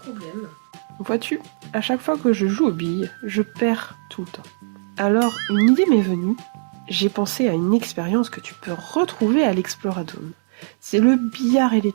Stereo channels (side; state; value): left; silent; digital silence